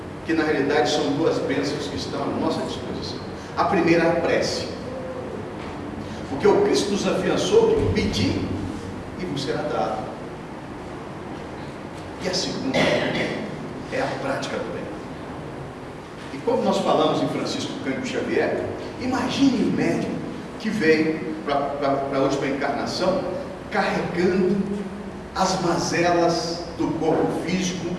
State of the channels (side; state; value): both; identical; correlation 1.00